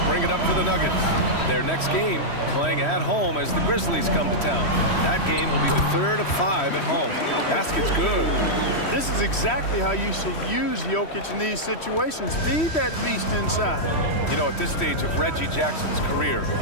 bring it up for the Nuggets. Their next game playing at home as the Grizzlies come to town. That game will be the third of 5 at home. Basket's good. This is exactly how you should use Jokic in these situations. Feed that beast inside. You know, at this stage of Reggie Jackson's career,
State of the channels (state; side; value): late; right; 3.1 ms